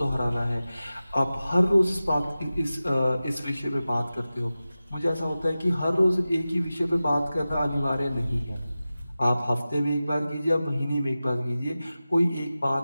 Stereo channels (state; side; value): inverted; both; correlation -0.95